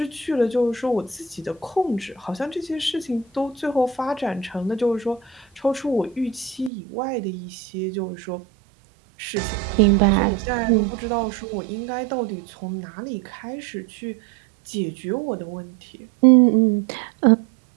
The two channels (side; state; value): left; drops out; at 6.7 s